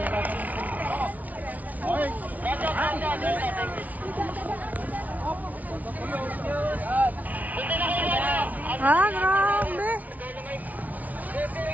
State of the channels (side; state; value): left; late; 0.074 ms